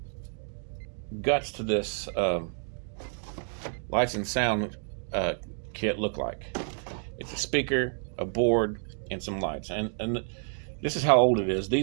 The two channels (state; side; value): silent; left; 58 dB below the other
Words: guts to this lights and sound kit look like. It's a speaker, a board, and some lights. And this is how old it is.